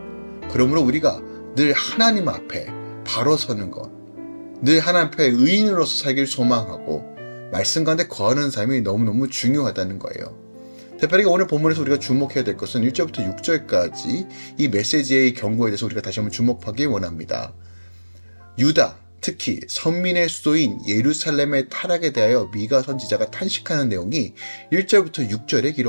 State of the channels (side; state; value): both; inverted; correlation -1.00